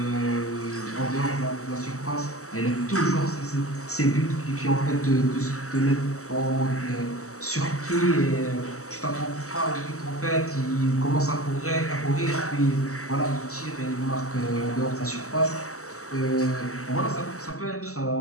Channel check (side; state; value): right; late; 0.65 ms